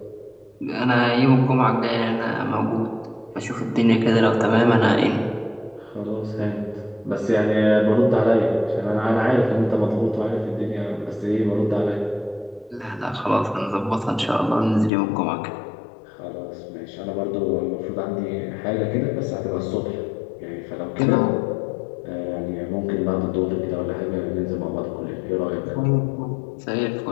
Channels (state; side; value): drops out; right; at 14.9 s